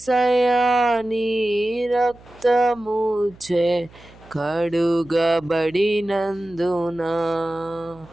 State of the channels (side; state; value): right; noise; hum, 24 dB below the sound